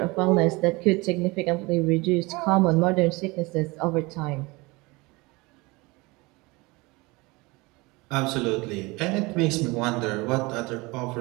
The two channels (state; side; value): quieter; left; 24.1 dB